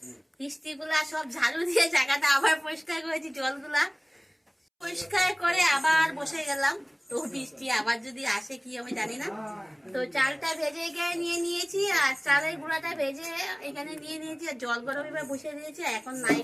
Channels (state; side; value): identical; both; correlation 1.00